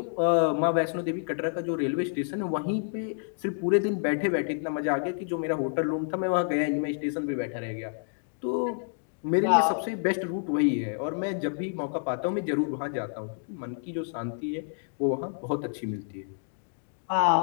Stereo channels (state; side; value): silent; right; digital silence